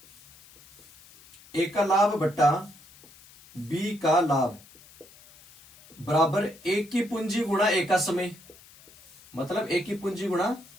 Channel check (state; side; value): noise; left; hiss, 24 dB below the sound